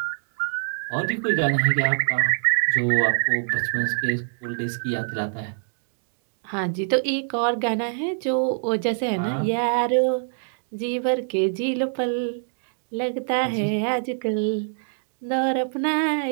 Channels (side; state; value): left; silent; digital silence